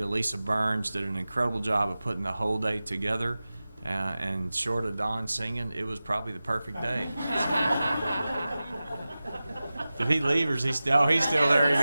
Lisa Burns did an incredible job of putting the whole day together. And short of Don singing, it was probably the perfect day. Did he leave, or is he still? Oh, he's still there. You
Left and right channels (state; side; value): inverted; both; correlation -0.96